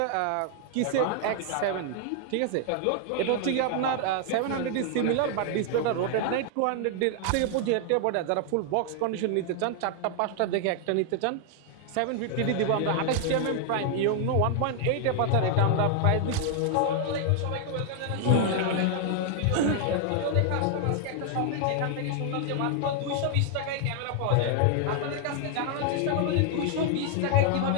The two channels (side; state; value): both; different; correlation 0.00